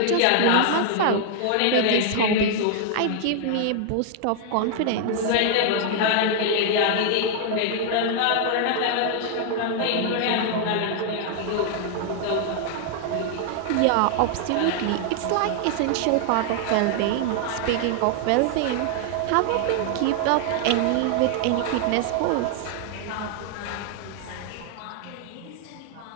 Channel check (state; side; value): different; both; correlation 0.00